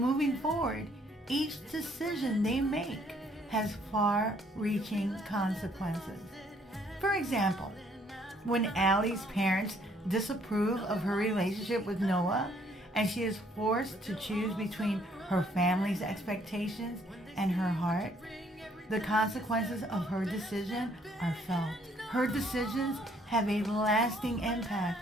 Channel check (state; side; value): normal; both; correlation 0.65